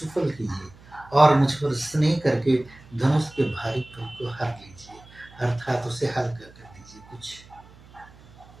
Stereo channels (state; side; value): noise; right; hum, 23 dB below the sound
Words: कीजिए और मुझ पर स्नेह करके धनुष के भारीपन को हर लीजिए, अर्थात उसे हल्का कर दीजिए कुछ।